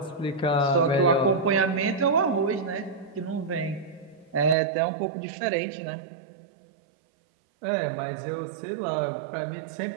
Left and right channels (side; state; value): left; drops out; at 4.5 s